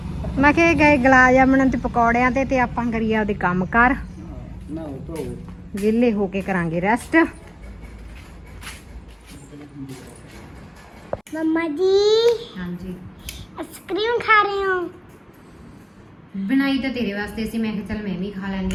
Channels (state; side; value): identical; both; correlation 1.00